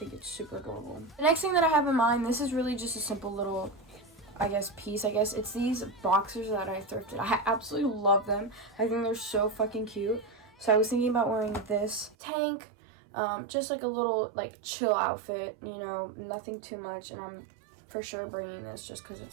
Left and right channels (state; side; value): drops out; left; at 12.2 s